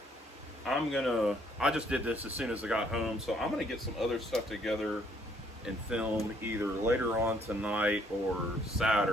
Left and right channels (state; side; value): normal; both; correlation 0.66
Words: I just did this as soon as I got home, so I'm gonna get some other stuff together and film either later on tonight or